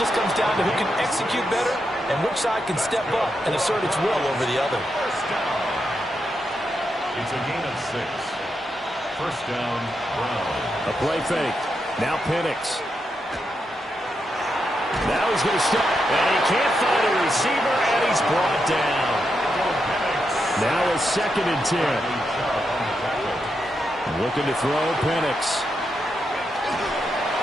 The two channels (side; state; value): both; normal; correlation 0.84